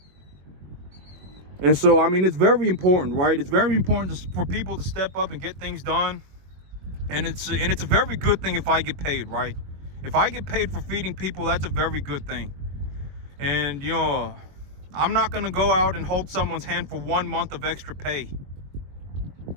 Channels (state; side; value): late; left; 22 ms